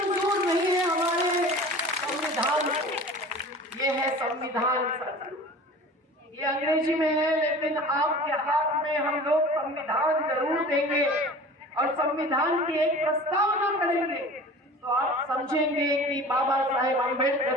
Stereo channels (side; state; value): both; normal; correlation 0.40